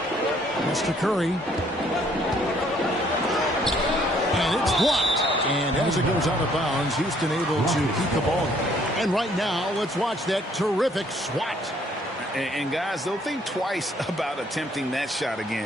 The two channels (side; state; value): both; normal; correlation 0.63